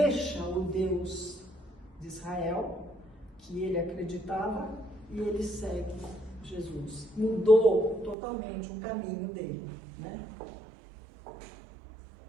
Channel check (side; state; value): left; drops out; at 8.2 s